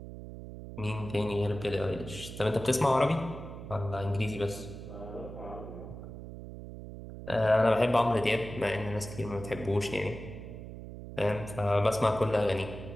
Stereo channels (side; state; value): right; noise; hum, 11 dB below the sound